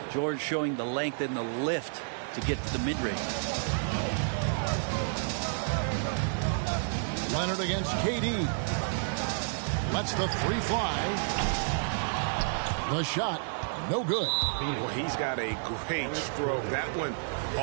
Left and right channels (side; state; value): left; silent; 58 dB below the other